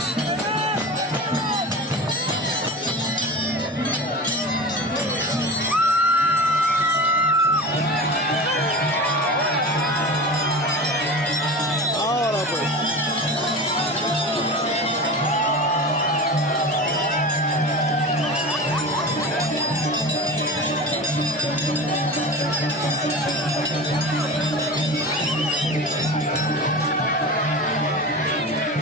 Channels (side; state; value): both; normal; correlation 0.30